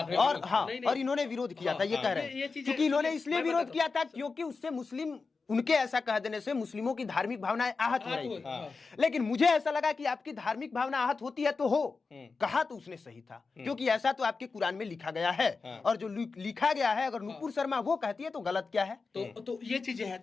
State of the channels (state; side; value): quieter; right; 4.4 dB